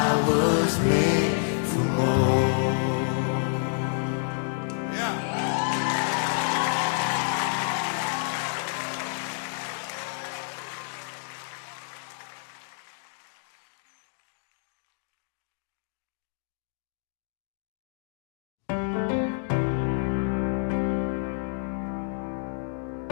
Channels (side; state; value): right; silent; digital silence